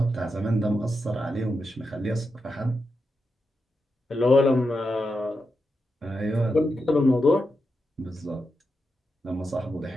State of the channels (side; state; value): both; normal; correlation 0.87